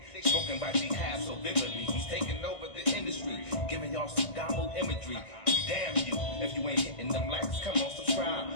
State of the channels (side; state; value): right; late; 1.6 ms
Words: Spoken by jihad so vividly. He's taking over the industry, giving y'all some Damu imagery. Damn you, if you ain't hitting them likes, come on,